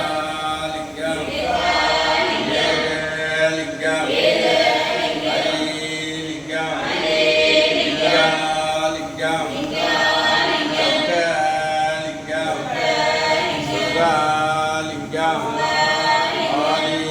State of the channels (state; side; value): identical; both; correlation 1.00